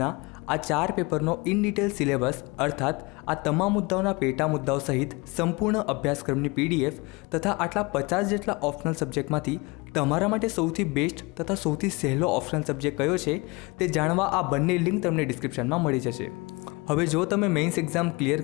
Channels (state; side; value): quieter; right; 26.1 dB